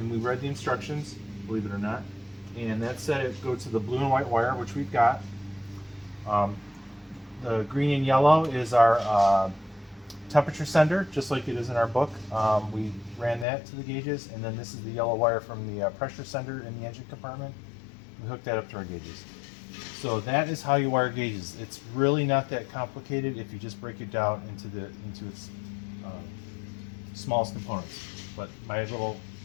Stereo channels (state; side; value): drops out; right; at 13.5 s